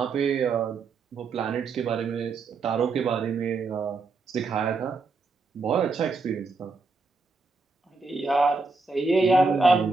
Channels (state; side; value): quieter; left; 4.0 dB